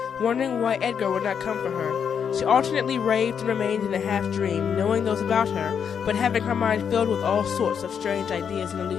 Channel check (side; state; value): right; quieter; 7.4 dB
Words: wondering why Edgar would not come for her. She alternately raved and remained in a half-dream, knowing those about her, but having her mind filled with all sorts of strange ideas and